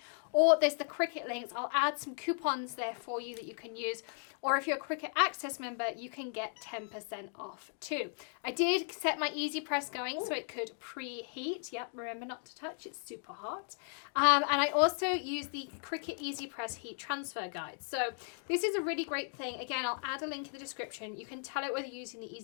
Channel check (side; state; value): right; silent; 54 dB below the other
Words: Or there's the Cricut links. I'll add some coupons there for you that you can use. Or if you're a Cricut Access member, you can get 10% off too. I did set my EasyPress going so it could preheat. Yep, remember not to touch, it's super hot. And I also use the Cricut EasyPress heat transfer guide. So this is a really great thing. Again, I'll add a link in the description. You can tell it whether you're using the